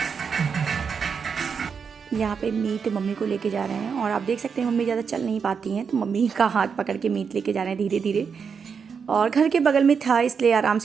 यहाँ पे मीत मम्मी को लेके जा रहे हैं और आप देख सकते हैं मम्मी ज़्यादा चल नहीं पाती हैं, तो मम्मी का हाथ पकड़ के मीत लेके जा रहे हैं धीरे धीरे। और घर के बगल में था इसलिए आराम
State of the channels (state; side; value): quieter; left; 6.2 dB